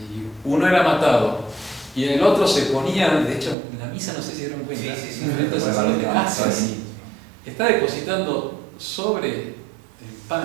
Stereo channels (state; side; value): drops out; left; at 3.6 s